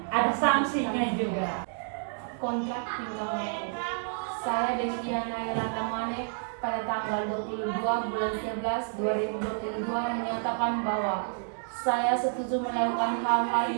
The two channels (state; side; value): silent; left; digital silence